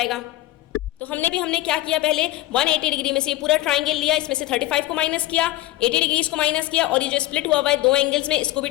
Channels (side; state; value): right; quieter; 16.7 dB